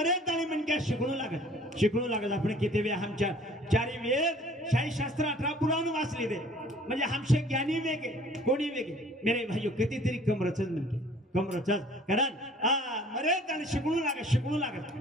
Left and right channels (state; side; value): normal; both; correlation 0.53